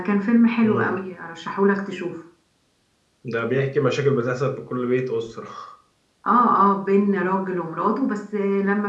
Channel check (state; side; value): identical; both; correlation 1.00